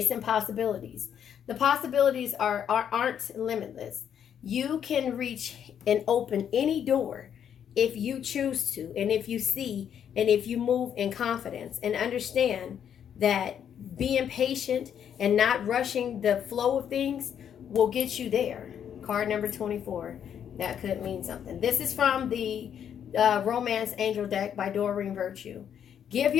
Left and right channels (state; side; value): quieter; right; 8.8 dB